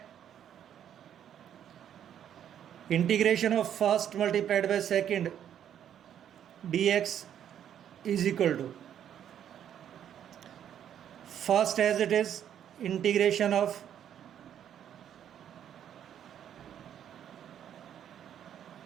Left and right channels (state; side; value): quieter; left; 9.7 dB